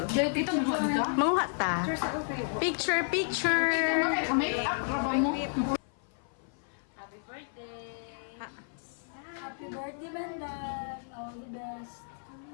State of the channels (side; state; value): right; silent; 55 dB below the other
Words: Manguha ta. Picture. Happy birthday, Bandan. All the best.